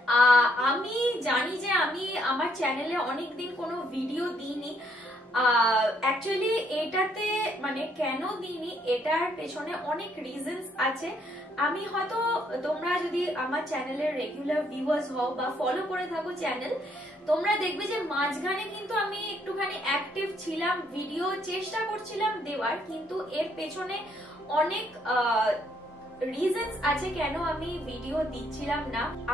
আমি জানি যে আমি আমার চ্যানেলে অনেকদিন কোনো ভিডিও দিইনি। অ্যাকচুয়ালি এটাতে মানে কেন দিইনি এটার পেছনে অনেক রিজনস আছে। আমি হয়তো তোমরা যদি আমার চ্যানেলের রেগুলার ভিউয়ার্স হও বা ফলো করে থাকো চ্যানেল, তোমরা দেখবে যে মাঝখানে কিন্তু আমি একটুখানি অ্যাক্টিভ ছিলাম, ভিডিও চেষ্টা করছিলাম দেওয়ার, কিন্তু এর পেছনে অনেক রিজনস আছে কেন আমি ভিডিও দিচ্ছিলাম না।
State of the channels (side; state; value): both; normal; correlation 0.70